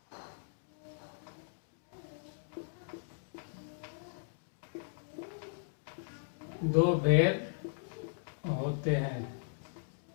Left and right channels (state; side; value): silent; right; digital silence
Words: दो भेद होते हैं।